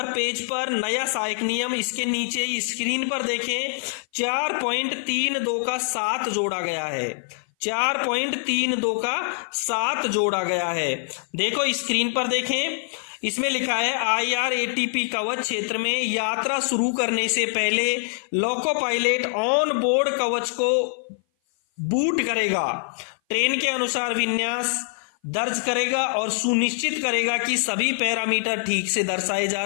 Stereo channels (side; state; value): right; silent; 57 dB below the other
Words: पेज पर नया सहायक नियम, इसके नीचे स्क्रीन पर देखें 4.32 का 7 जोड़ा गया है। 4.32 का 7 जोड़ा गया है। देखो स्क्रीन पर देखें, इसमें लिखा है IRATP कवच क्षेत्र में यात्रा शुरू करने से पहले लोको पायलट ऑन बोर्ड कवच को बूट करेगा, ट्रेन के अनुसार विन्यास दर्ज करेगा और सुनिश्चित करेगा कि सभी पैरामीटर ठीक से दर्शाए जा